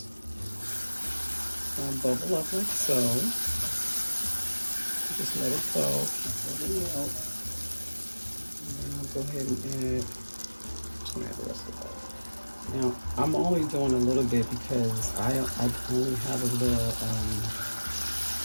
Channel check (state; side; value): inverted; both; correlation -1.00